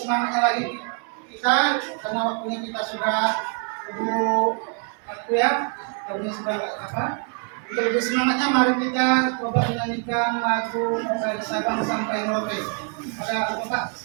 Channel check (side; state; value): left; quieter; 38.7 dB